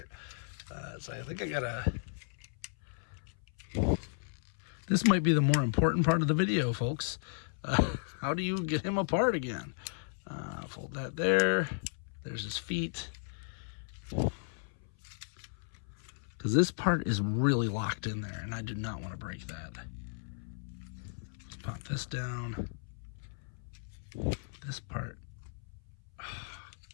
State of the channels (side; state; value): right; silent; 55 dB below the other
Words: So I think I gotta. This might be the more important part of the video, folks. How do you get him apart again? Fold that there. There's his feet. Because this part is really locked in there, and I do not want to break that. Pop this down. This part. Oh.